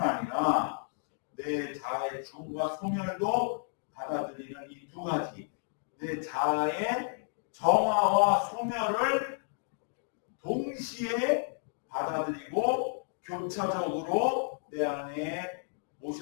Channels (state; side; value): silent; right; digital silence